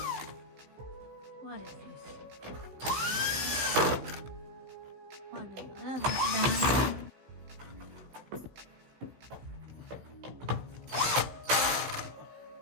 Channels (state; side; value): late; left; 16 ms